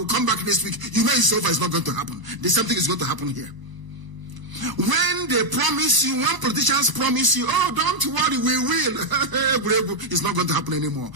come back next week. You know it's over, it's not going to happen. There's something is going to happen here. When they promise you, when politicians promise you, don't worry, we will. It's not going to happen anymore.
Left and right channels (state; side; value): late; left; 1.0 ms